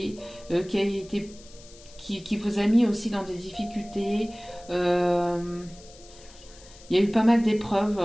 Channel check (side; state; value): left; noise; hiss, 22 dB below the sound